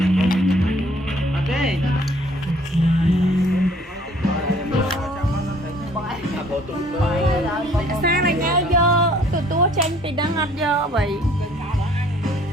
Ok. Sao này nhau vô? Tụi tôi tranh thì đang ngọt vô vậy.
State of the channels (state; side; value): normal; both; correlation 0.57